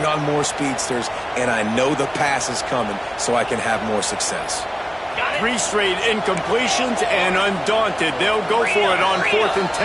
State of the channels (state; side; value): identical; both; correlation 1.00